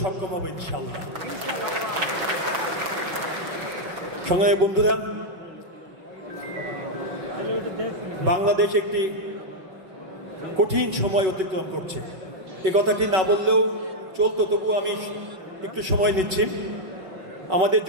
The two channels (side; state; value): left; late; 5.3 ms